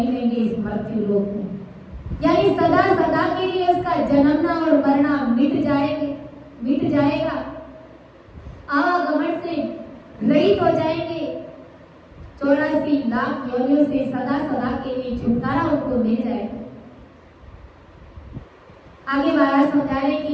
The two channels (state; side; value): identical; both; correlation 1.00